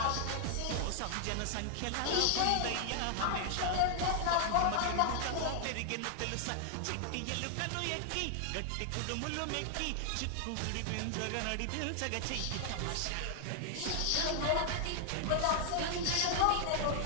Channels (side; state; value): both; different; correlation 0.00